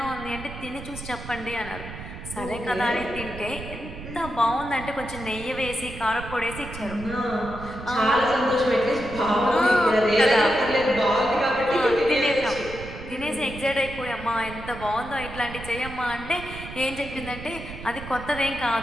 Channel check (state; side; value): noise; right; rumble, 12 dB below the sound